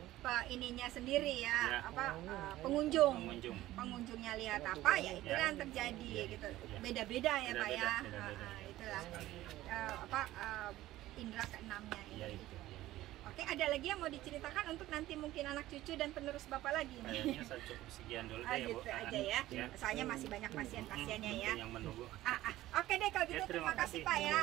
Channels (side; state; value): left; quieter; 15.7 dB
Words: ininya sendiri ya, pengunjungnya lihat apa ya itu yang terjadi gitu. Beda-beda ya Pak ya. Itulah indera keenamnya itu. Oke, ada lagi yang mau diceritakan untuk nanti mungkin anak cucu dan penerus Bapak lagi? Kayaknya saya cukup sekian dulu deh gitu ya, Bu. Aja ya. Soalnya masih banyak pasien-pasiennya ya. Yang menunggu. Oke deh kalau gitu, terima kasih Pak ya.